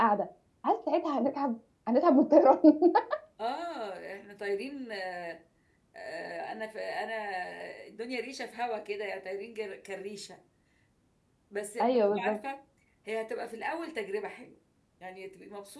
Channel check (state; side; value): identical; both; correlation 1.00